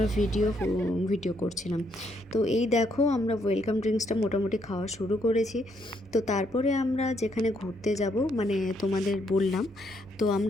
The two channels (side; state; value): both; normal; correlation 0.73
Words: ভিডিও করছিলাম। তো এই দেখো আমরা ওয়েলকাম ড্রিঙ্কসটা মোটামুটি খাওয়া শুরু করেছি। তো তারপরে আমরা যেখানে ঘুরতে যাব মানে তোমাদের বললাম, তো